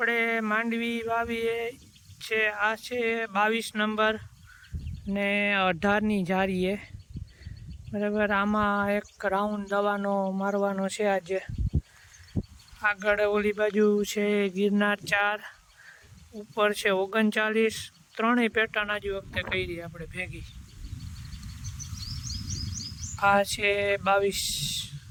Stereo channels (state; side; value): identical; both; correlation 1.00